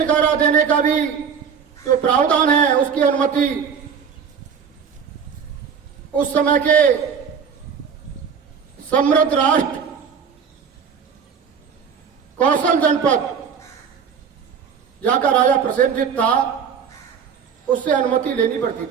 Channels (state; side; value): quieter; left; 6.8 dB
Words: देने का भी जो प्रावधान है उसकी अनुमति उस समय के समृद्ध राष्ट्र कौशल जनपद जहां का राजा प्रसेनजीत था उससे अनुमति लेनी पड़ती